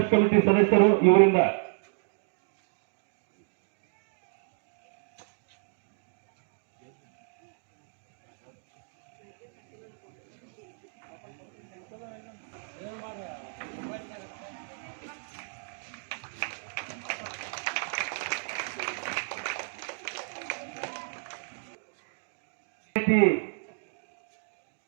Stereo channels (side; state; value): left; silent; digital silence